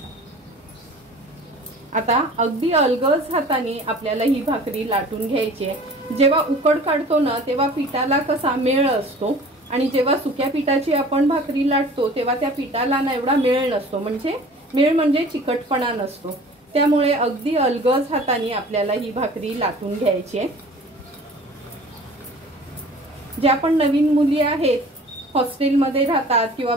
आता अगदी अलगद हाताने आपल्याला ही भाकरी लाटून घ्यायची आहे। जेव्हा उकड काढतो ना तेव्हा पिठाला कसा मेळ असतो, आणि जेव्हा सुक्या पिठाची आपण भाकरी लाटतो तेव्हा त्या पिठाला ना एवढा मेळ नसतो, मेळ म्हणजे चिकटपणा नसतो। त्यामुळे अगदी अलगद हाताने आपल्याला ही भाकरी लाटून घ्यायची आहे। ज्या पण नवीन मुली आहेत, हॉस्टेलमध्ये राहतात किंवा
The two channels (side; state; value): both; normal; correlation 0.45